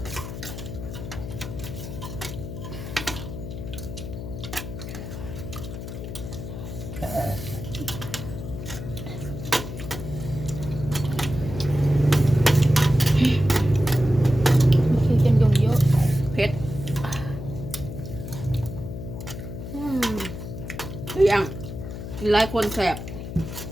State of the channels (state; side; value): noise; left; hum, 8 dB below the sound